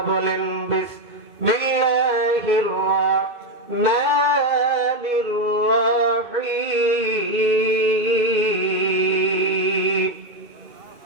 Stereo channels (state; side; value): late; left; 2.2 ms